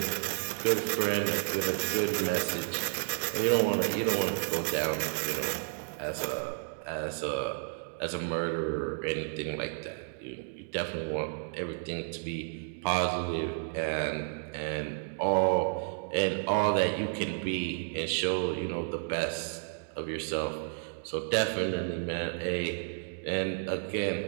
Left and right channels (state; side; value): silent; left; digital silence